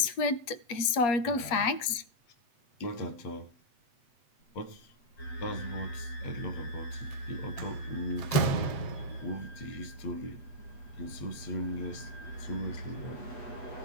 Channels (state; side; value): late; right; 8.4 ms